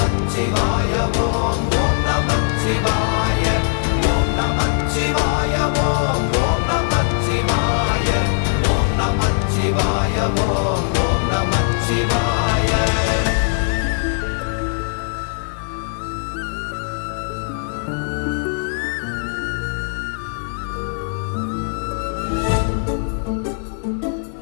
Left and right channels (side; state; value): right; silent; digital silence